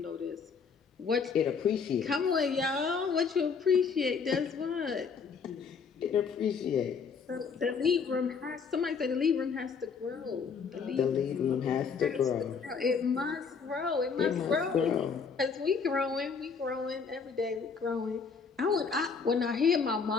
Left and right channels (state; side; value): quieter; right; 5.6 dB